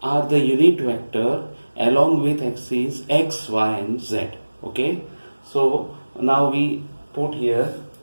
are the unit vector along with axes x, y and z. Okay. So now we put here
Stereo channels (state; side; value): inverted; both; correlation -1.00